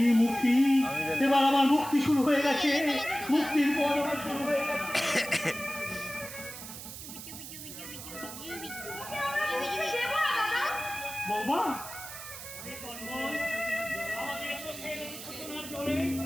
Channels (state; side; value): noise; right; hiss, 11 dB below the sound